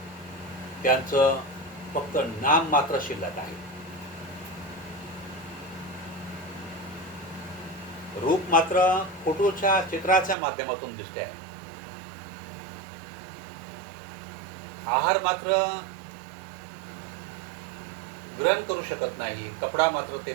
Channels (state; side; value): drops out; left; at 10.4 s